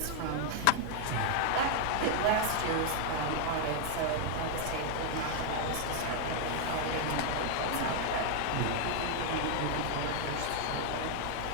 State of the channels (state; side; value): different; both; correlation 0.00